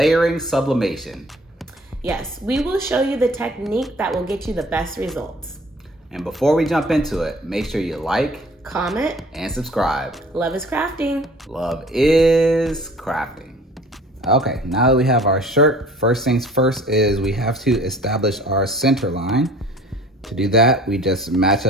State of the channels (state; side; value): normal; both; correlation 0.50